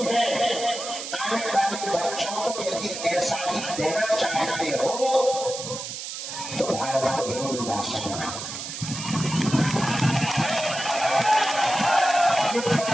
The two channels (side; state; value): right; noise; hiss, 7 dB below the sound